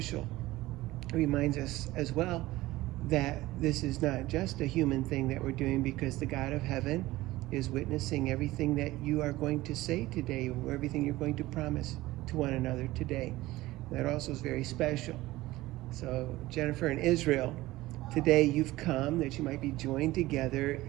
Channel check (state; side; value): quieter; left; 17.9 dB